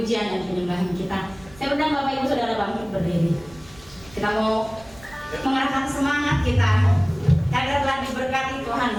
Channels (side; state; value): right; noise; rumble, 23 dB below the sound